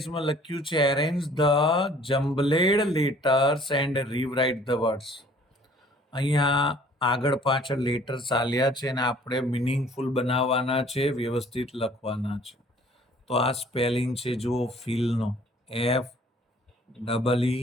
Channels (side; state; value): both; normal; correlation 0.55